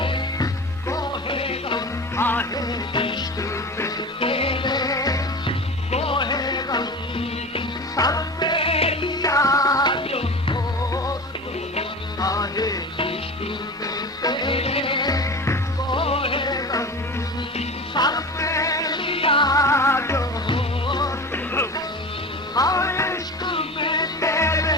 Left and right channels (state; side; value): normal; both; correlation 0.31